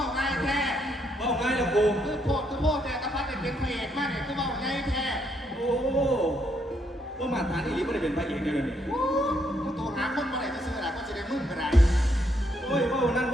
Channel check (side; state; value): both; normal; correlation 0.74